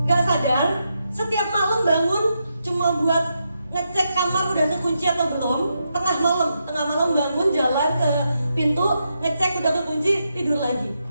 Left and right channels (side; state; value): both; inverted; correlation -0.84